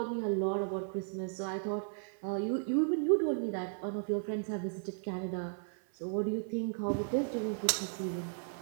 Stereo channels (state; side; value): silent; left; 54 dB below the other